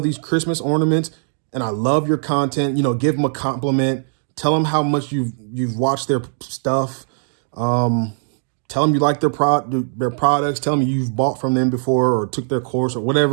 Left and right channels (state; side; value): silent; left; digital silence